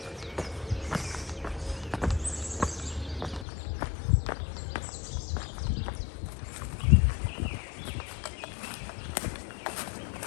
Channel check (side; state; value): right; drops out; at 3.5 s